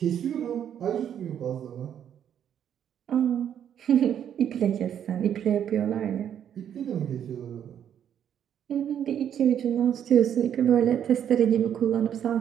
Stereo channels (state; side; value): quieter; left; 9.4 dB